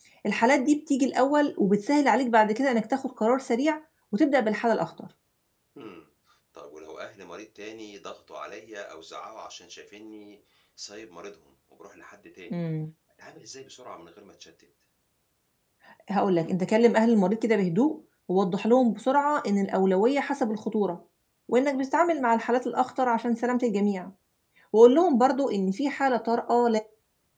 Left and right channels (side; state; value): both; identical; correlation 1.00